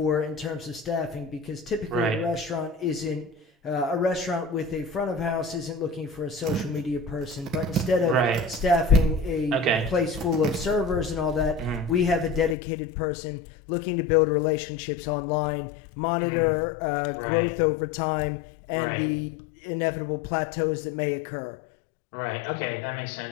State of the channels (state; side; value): drops out; right; at 12.6 s